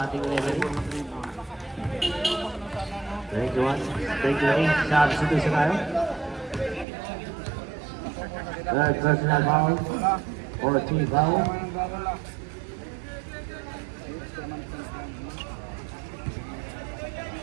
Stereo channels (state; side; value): drops out; left; at 6.9 s